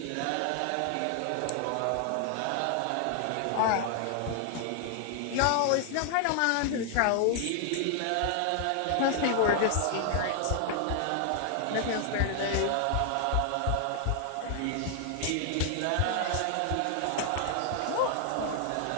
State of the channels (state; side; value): different; both; correlation 0.00